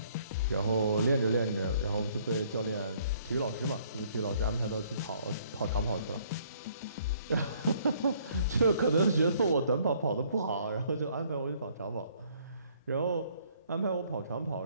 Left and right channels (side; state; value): both; inverted; correlation -0.63